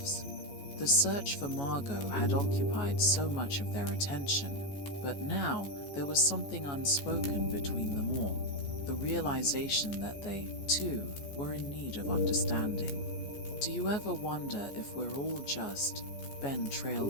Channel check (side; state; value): right; late; 14 ms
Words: The search for Margo had occupied so much of their attention, but now there was something unspoken between them all, the realization that they, too, were in need of understanding. Do you ever wonder if we're all just... Ben